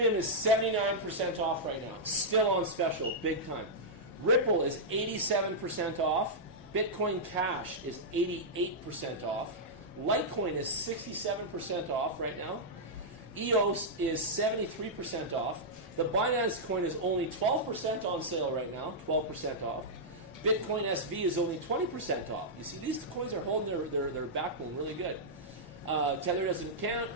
is 79% off right now. Still on special, big time. Ripple is 87% off. Bitcoin Cash is 88% off. Litecoin is 67% off right now. EOS is 73% off. The Binance coin is only 12% on sale right now, 12% off. Bitcoin SV is only 20% off. You see, these coins are holding their backbone really good. Tether doesn't count,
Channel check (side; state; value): both; normal; correlation -0.09